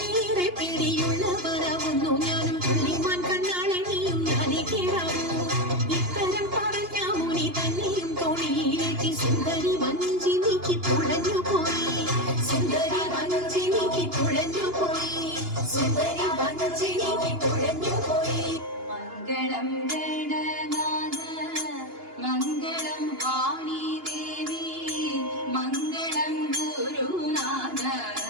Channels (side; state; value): left; late; 2.9 ms